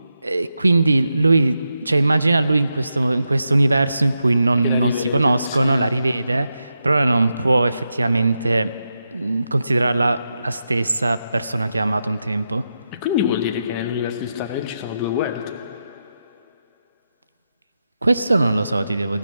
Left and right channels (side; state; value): both; inverted; correlation -0.87